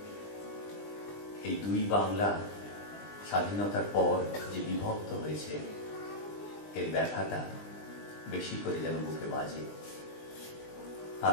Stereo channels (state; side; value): late; right; 20 ms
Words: এই দুই বাংলা স্বাধীনতার পর যে বিভক্ত হয়েছে এর ব্যথাটা বেশি করে যেন বুকে বাজে।